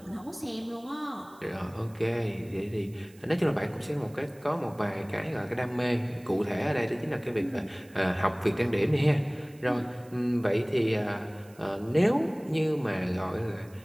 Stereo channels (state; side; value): noise; right; hiss, 27 dB below the sound